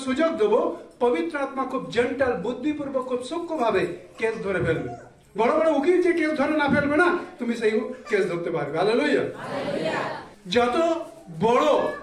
সুযোগ দেবো, পবিত্র আত্মা খুব জেন্টাল, বুদ্ধিপূর্বক, খুব সূক্ষ্ম ভাবে কেস ধরে ফেলবে। বড় বড় উকিল যে কেস ধরে না ফেলবে না, তুমি সেই কেস ধরতে পারবে। হালেলুয়া। যত বড়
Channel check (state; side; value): identical; both; correlation 1.00